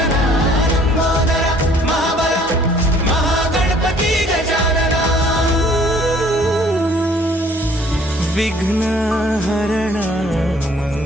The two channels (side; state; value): both; normal; correlation 0.57